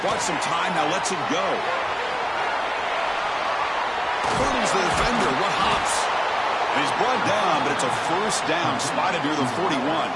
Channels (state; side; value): identical; both; correlation 1.00